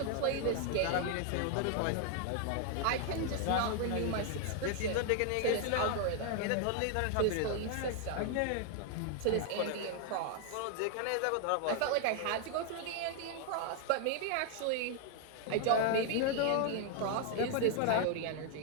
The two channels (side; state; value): both; different; correlation 0.00